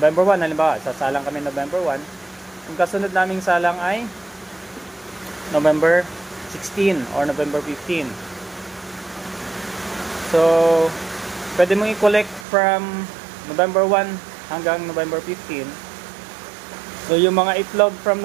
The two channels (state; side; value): drops out; left; at 12.5 s